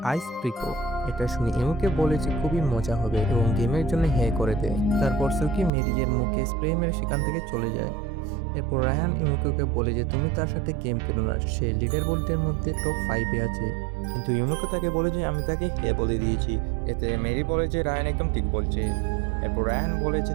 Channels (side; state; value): left; drops out; at 5.7 s